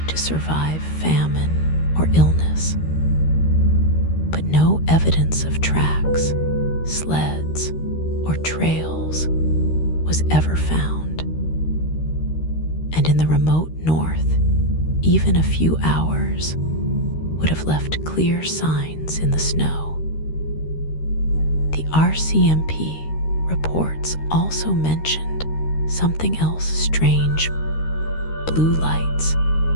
to survive famine or illness. But no evidence of tracks, sleds, or trails was ever found. And in the remote north, even a few hours would have left clear signs in the snow. The RCMP reports also mentioned something else strange: blue lights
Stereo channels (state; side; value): late; right; 13 ms